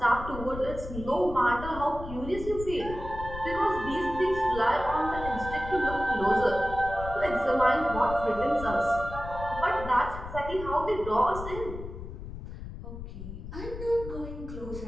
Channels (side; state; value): left; noise; rumble, 10 dB below the sound